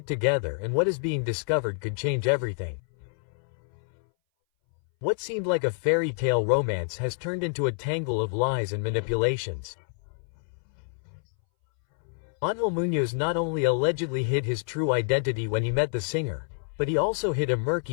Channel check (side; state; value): right; silent; 60 dB below the other